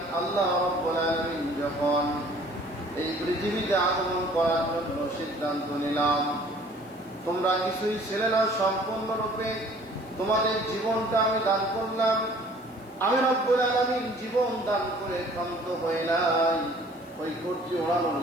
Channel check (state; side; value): noise; left; hiss, 28 dB below the sound